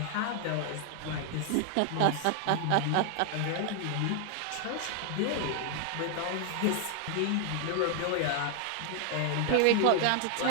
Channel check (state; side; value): different; both; correlation 0.00